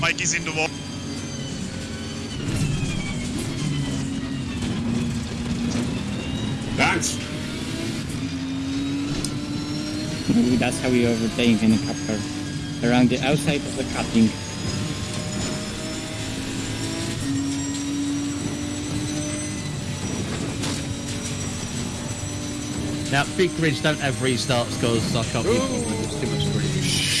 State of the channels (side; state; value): both; identical; correlation 1.00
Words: is in the wall. Thanks. Ooh, that's how we overtake in a cup car. Around the outside of the cutting. Now, big grids don't have restarts because I can't be bothered. It's too much grid.